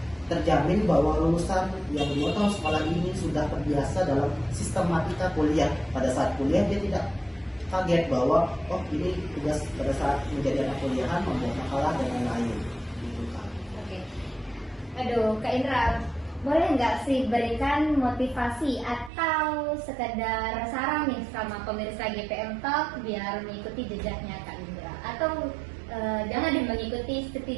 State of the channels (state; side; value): drops out; left; at 19.1 s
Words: terjamin bahwa lulusan yang 2 tahun sekolah ini sudah terbiasa dalam sistematika kuliah. Pada saat kuliah dia tidak kaget bahwa oh ini tugas pada saat menjadi anak kuliahan, membuat makalah dan lain-lain. Oke. Aduh, Kak Indra, boleh nggak sih berikan motivasi atau sekedar saran nih sama pemirsa GPM Talk biar mengikuti jejaknya Kak Indra, atau jangan mengikuti,